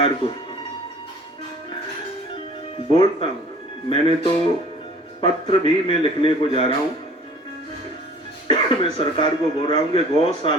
को बोलता हूं, मैंने तो पत्र भी मैं लिखने को जा रहा हूं। मैं सरकार को बोल रहा हूं कि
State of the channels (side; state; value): both; normal; correlation 0.49